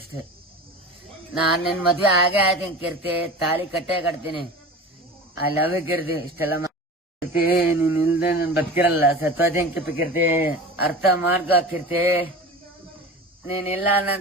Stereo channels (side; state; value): both; normal; correlation 0.34